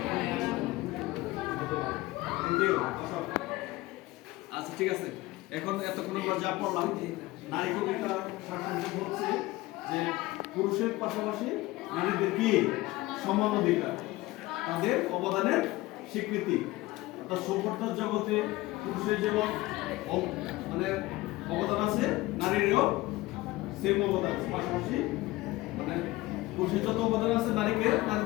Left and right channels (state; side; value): quieter; right; 19.2 dB